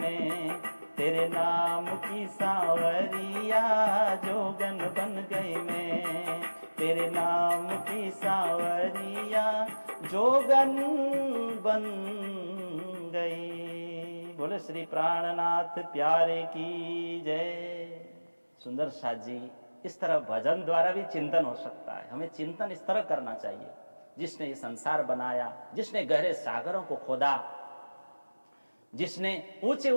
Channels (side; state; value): both; inverted; correlation -1.00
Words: तेरे नाम की सांवरिया, जोगन बन गई मैं, तेरे नाम की सांवरिया, जोगन बन गई। बोले श्री प्राणनाथ प्यारे की जय। सुंदर साथ जी, इस तरह भजन द्वारा भी चिंतन हो सकता है। हमें चिंतन इस तरह करना चाहिए, जिसने ये संसार बनाया, जिसने गहरे सागरों को खोदा, जिसने ऊंचे